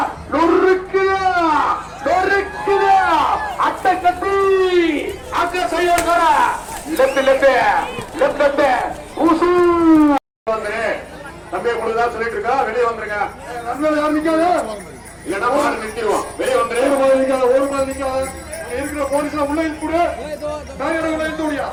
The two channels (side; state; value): both; identical; correlation 1.00